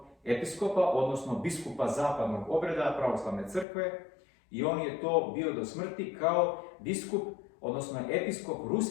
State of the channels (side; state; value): right; drops out; at 3.7 s